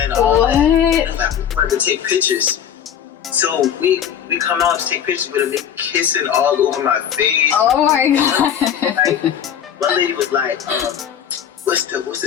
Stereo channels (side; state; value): right; quieter; 9.1 dB